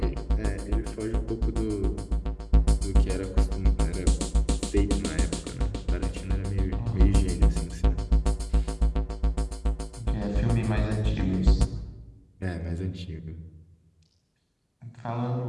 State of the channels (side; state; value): both; identical; correlation 1.00